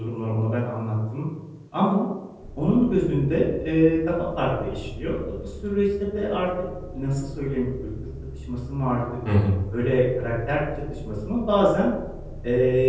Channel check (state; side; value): identical; both; correlation 1.00